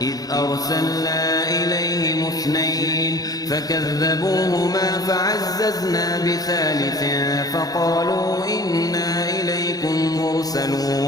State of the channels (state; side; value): late; right; 0.18 ms